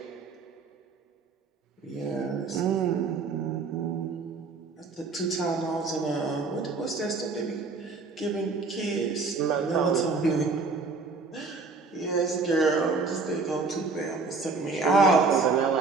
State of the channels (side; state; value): left; quieter; 4.2 dB